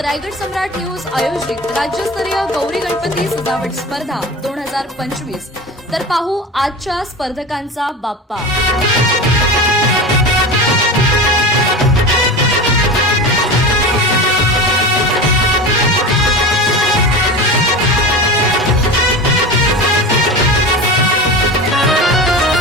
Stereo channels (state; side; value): normal; both; correlation 0.29